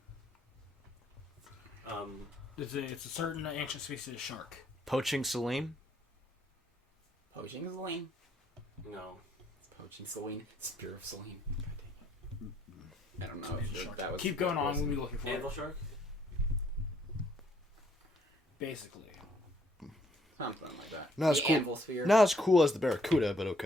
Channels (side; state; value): both; normal; correlation 0.67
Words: Um, It's a certain ancient species of shark. Poaching Celine? Poaching Selene. no. Poaching Selene. Spear of Selene. I don't know if Shark. that was... Keep going on. We'll be looking for Anvil it. shark? Basically. Something like that. Not as The cool. Anvil sphere. Not as cool as the Barracuda, but